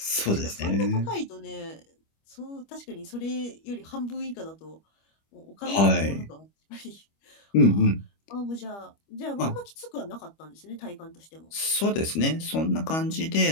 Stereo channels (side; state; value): right; late; 25 ms